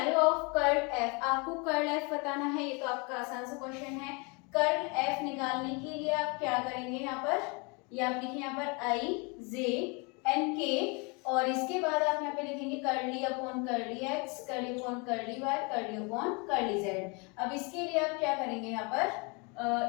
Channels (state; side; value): quieter; right; 31.0 dB